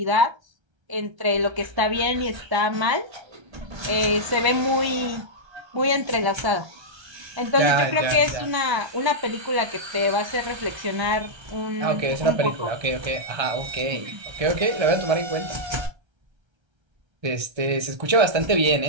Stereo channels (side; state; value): left; late; 1.3 ms